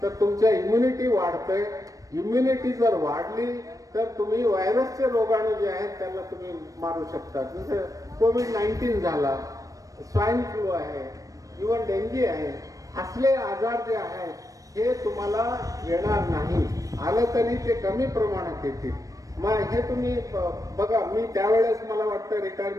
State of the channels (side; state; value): left; late; 0.16 ms